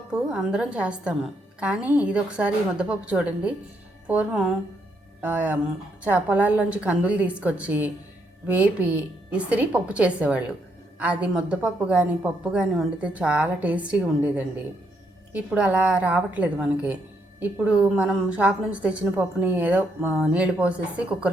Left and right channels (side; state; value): both; normal; correlation 0.76